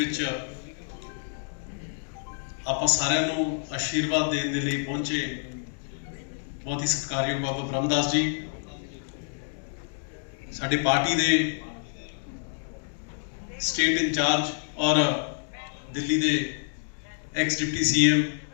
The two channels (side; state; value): right; silent; digital silence